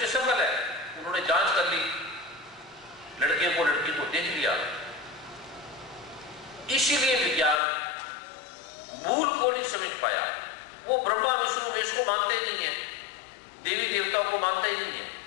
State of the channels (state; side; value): drops out; right; at 7.6 s